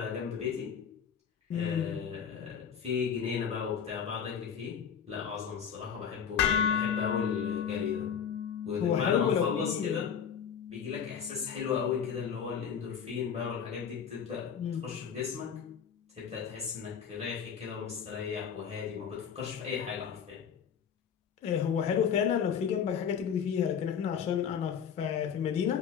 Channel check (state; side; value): quieter; right; 7.5 dB